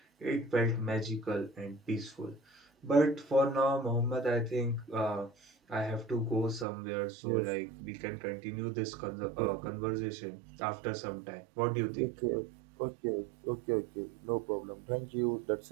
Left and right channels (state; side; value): drops out; left; at 6.7 s